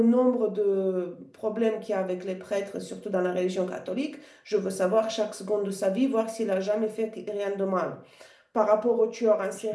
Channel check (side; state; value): both; identical; correlation 1.00